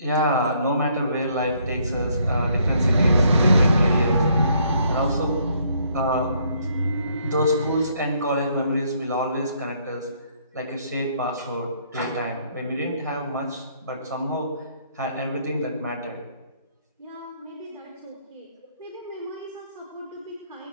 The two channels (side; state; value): both; inverted; correlation -0.68